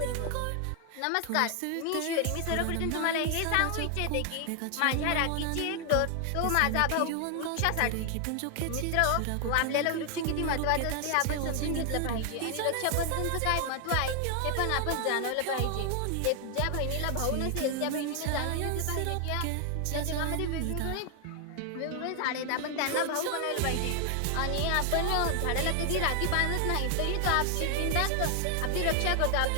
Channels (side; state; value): both; different; correlation 0.00